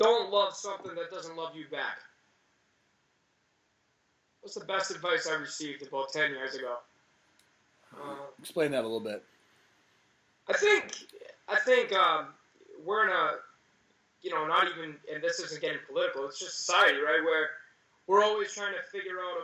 something that doesn't love you back. What's the best advice I received about 10 years ago? Explain that a little bit. I think we're in a, not even, and this isn't getting political, it's just society, right, where we're always trying to figure out,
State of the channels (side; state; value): both; identical; correlation 1.00